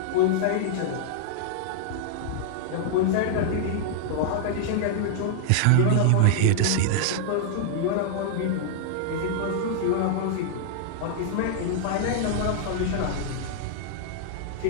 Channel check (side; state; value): both; different; correlation -0.01